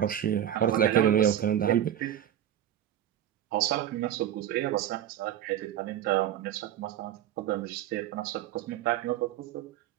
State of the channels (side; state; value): left; quieter; 11.1 dB